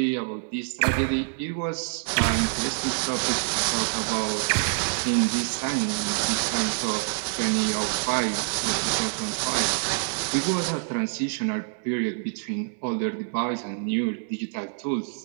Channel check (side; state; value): left; silent; digital silence